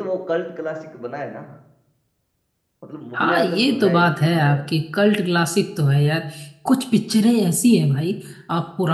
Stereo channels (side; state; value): both; identical; correlation 1.00